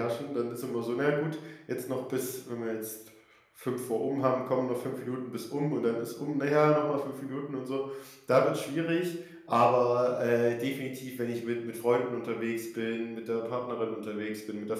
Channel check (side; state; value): both; identical; correlation 1.00